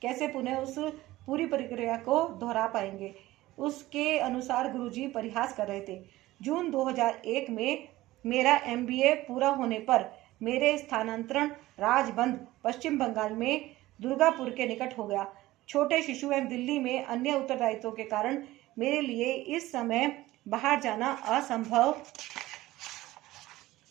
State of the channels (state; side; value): quieter; left; 17.1 dB